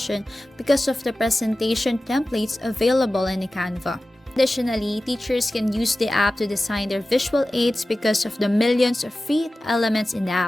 because of the presentation templates available in the Canva. Additionally, teachers can use the app to design their visual aids because of the millions of free elements in the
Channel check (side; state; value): both; normal; correlation 0.95